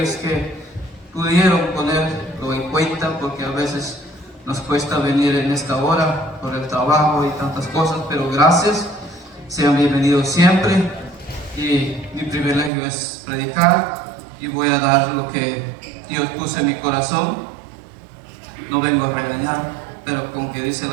que pudieron ponerlo en cuenta, porque a veces nos cuesta venir en esta hora por el trabajo y tantas cosas, pero gracias, sean bienvenidos siempre. Y mi privilegio es predicar y voy a dar lo que Dios puso en mi corazón. No vengo a regañar, pero como que dice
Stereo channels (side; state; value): left; drops out; at 12.7 s